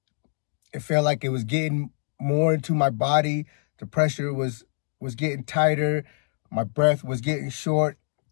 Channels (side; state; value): right; silent; digital silence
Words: it felt like it was getting more into my body. The pressure was getting tighter. My breath was getting short.